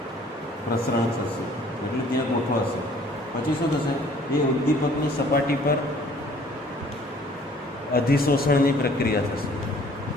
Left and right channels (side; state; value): both; normal; correlation 0.56